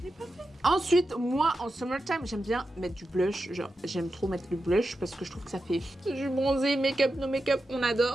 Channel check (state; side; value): normal; both; correlation 0.90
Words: l'ai pas fait. Ensuite, moi, en summertime, j'aime bien mettre du blush. Genre, j'aime trop mettre le blush parce que je trouve que ça fait... Je suis bronzée, make-up, no make-up, on